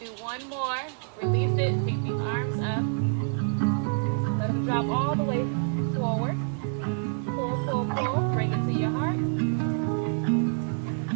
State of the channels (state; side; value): silent; left; 60 dB below the other